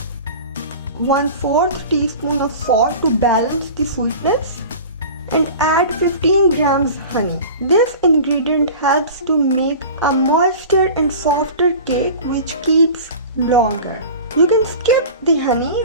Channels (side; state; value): both; inverted; correlation -0.37